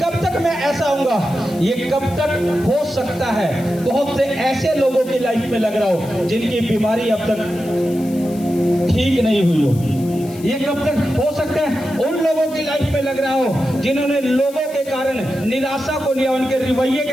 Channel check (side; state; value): left; noise; hiss, 20 dB below the sound